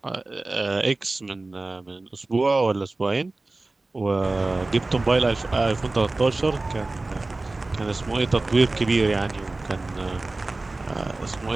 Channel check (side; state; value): left; quieter; 3.1 dB